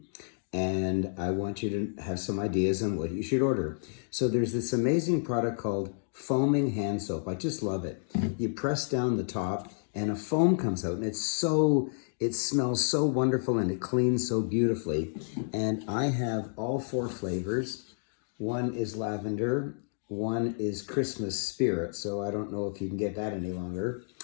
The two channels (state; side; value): silent; right; digital silence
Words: and I want you to have some ideas on what you should order. So there's this amazing product called foaming hand soap. I just love it. You press down the top and a foam comes out, and it smells so wonderful and it cleans so beautifully. And I have all four flavors. One is lavender, one is Christmas spirit, so I don't know if you can get that any longer.